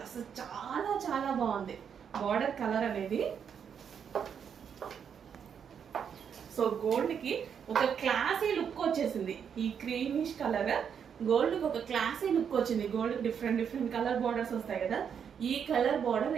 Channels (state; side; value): quieter; left; 7.5 dB